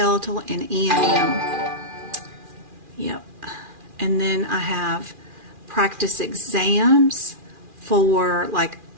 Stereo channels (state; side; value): late; left; 2.4 ms